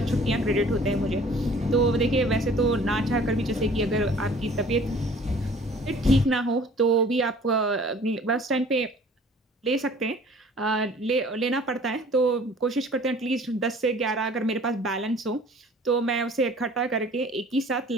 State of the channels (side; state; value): both; normal; correlation 0.51